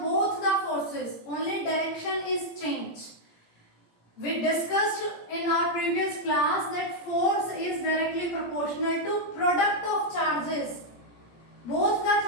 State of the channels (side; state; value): right; late; 17 ms